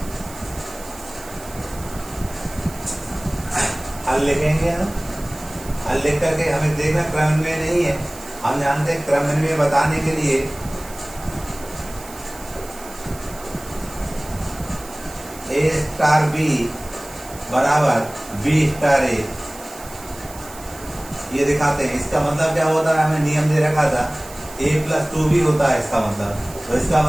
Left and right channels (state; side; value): noise; right; hiss, 17 dB below the sound